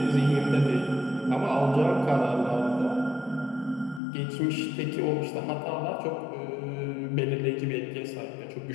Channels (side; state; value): right; drops out; at 4.0 s